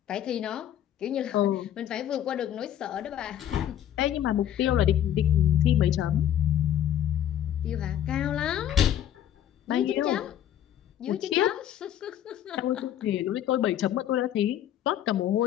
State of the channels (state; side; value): quieter; right; 10.8 dB